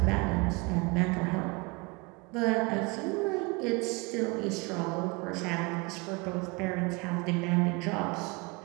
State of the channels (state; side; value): quieter; left; 27.3 dB